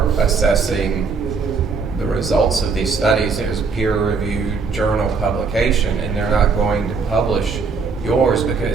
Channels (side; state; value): left; quieter; 4.9 dB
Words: assessing the results of these studies is a peer-reviewed journal publication, and they're not going to publish yours